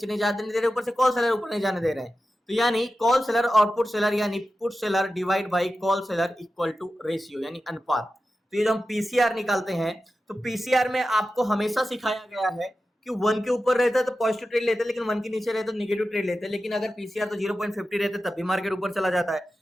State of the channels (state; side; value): normal; both; correlation 0.93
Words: नहीं जाने दे रहे, ऊपर से कॉल सेलर ऊपर नहीं जाने दे रहे हैं। तो यानी कॉल सेलर और पुट सेलर यानी put seller divide by call seller equal to ratio यानी अनुपात। तो ये जो हम पीसीआर निकालते हैं तो पीसीआर में आपको हमेशा सिखाया गया है कि 1 के ऊपर रहता है तो पॉजिटिव ट्रेड लेते हैं, लेकिन 1 के नीचे रहता है तो नेगेटिव ट्रेड लेते हैं। लेकिन अगर पीसीआर तो 0.50 रहता है तब भी मार्केट ऊपर चला जाता है।